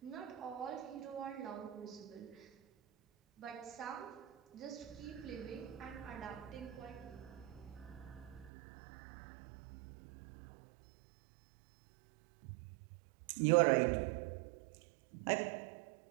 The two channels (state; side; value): drops out; left; at 8.5 s